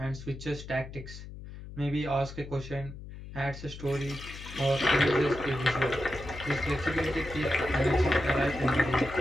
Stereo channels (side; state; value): left; noise; hum, 13 dB below the sound